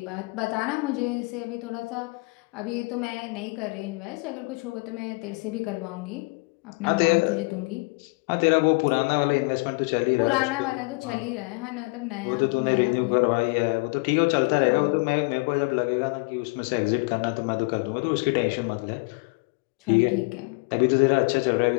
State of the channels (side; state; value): right; quieter; 28.7 dB